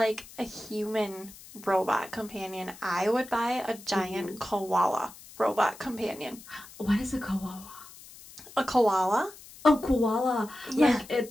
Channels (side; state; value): left; noise; hiss, 19 dB below the sound